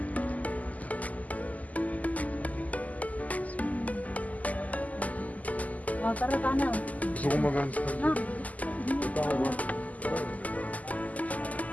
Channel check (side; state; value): right; late; 0.076 ms